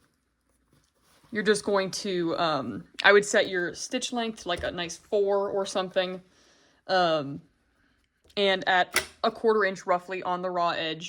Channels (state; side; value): identical; both; correlation 1.00